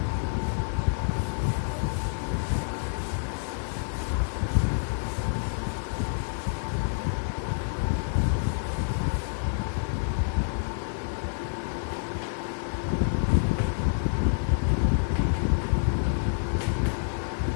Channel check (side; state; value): right; silent; digital silence